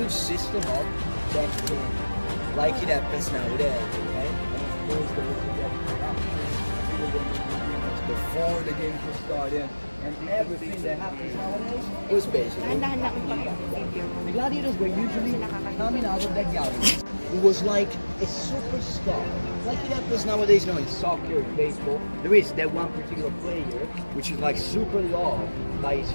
system of betting, like it happens nowadays, okay? And of course there was a corruption before the game was started, and everything that happens nowadays was basically the gladiators were usually coming out of that gallery. It was like a superstar, like it happens nowadays, in soccer, in baseball. There is that one particular player which is like super loved by his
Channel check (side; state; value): both; inverted; correlation -1.00